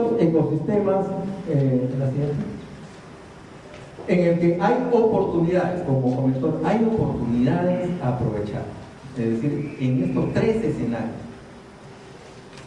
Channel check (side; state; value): both; identical; correlation 1.00